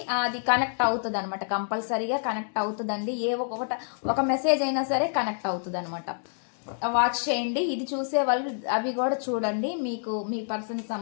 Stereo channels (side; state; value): right; silent; digital silence